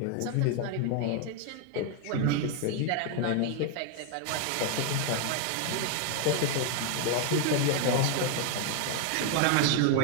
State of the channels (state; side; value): different; both; correlation 0.00